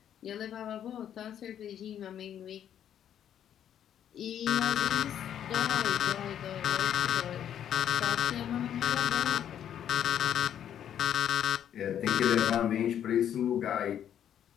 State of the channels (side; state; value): right; quieter; 9.8 dB